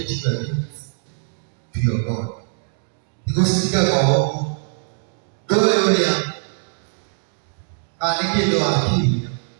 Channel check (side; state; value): left; silent; digital silence